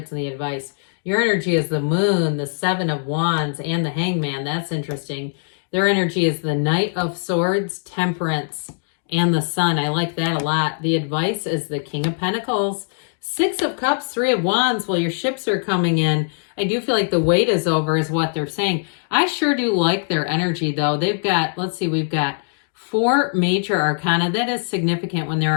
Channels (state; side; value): silent; right; digital silence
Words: in the advice. Your energy is the Moon, the 7 of Wands, and the Hangman. That's interesting. Their energy is the Knight of Swords, Temperance, and the Sun. I like that a lot. The advice is the King of Pentacles, 6 of Cups, 3 of Wands. Well, your ships are coming in. I do feel like the wait is over is what they're saying. I sure do like their energy, though. They've got, let's see, we've got 4 major arcana. That is significant when there